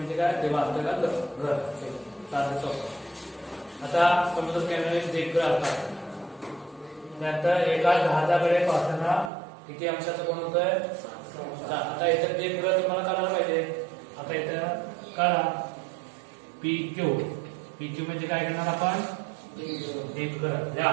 काय देवा आपल्याला घर साधं सोपं. आता समुद्र किनारी दीपगृह असतात त्यानंतर एका जहाजाकडे पाहताना किती अंशाचं कोण होतंय. आता इथं दीपगृह तुम्हाला कळायला पाहिजे. आता इथं कळा PQ म्हणजे काय करणार आपण दीपगृह लिहा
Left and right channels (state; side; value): drops out; left; at 9.3 s